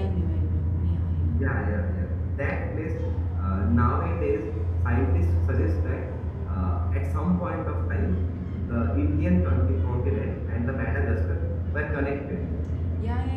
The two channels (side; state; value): both; identical; correlation 1.00